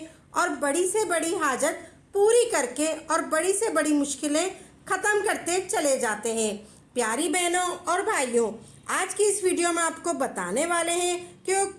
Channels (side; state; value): both; identical; correlation 1.00